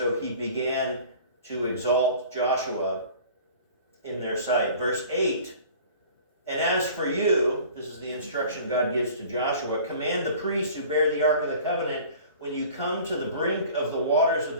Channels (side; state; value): both; inverted; correlation -0.45